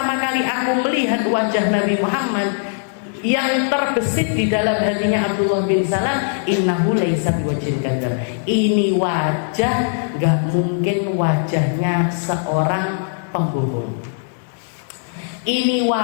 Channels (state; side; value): silent; right; digital silence